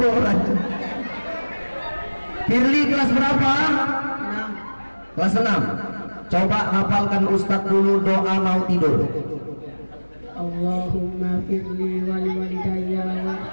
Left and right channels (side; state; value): both; inverted; correlation -1.00